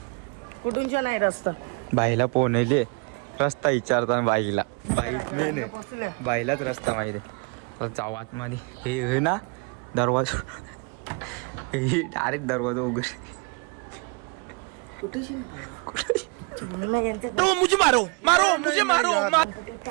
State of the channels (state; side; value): quieter; left; 33.4 dB